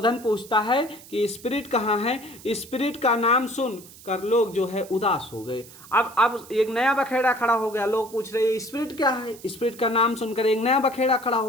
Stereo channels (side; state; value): right; noise; hiss, 20 dB below the sound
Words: पूछता है कि स्पिरिट कहाँ है। स्पिरिट का नाम सुन कर लोग जो है उदास हो गए। अब एक नया बखेड़ा खड़ा हो गया। लोग पूछ रहे स्पिरिट क्या है। स्पिरिट का नाम सुनकर एक नया बखेड़ा खड़ा